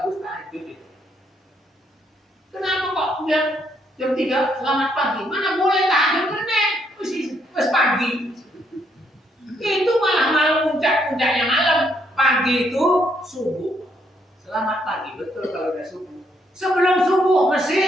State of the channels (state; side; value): normal; both; correlation 0.73